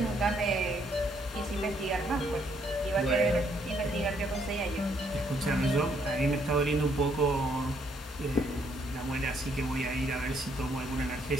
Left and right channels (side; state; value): both; normal; correlation 0.70